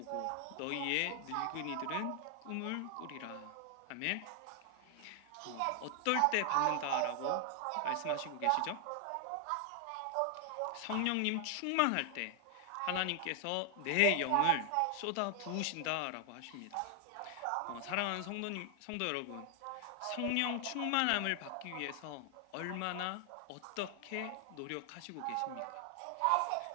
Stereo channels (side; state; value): both; different; correlation 0.00